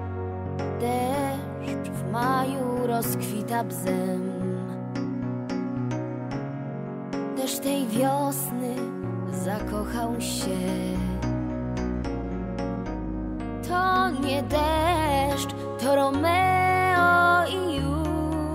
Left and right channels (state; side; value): identical; both; correlation 1.00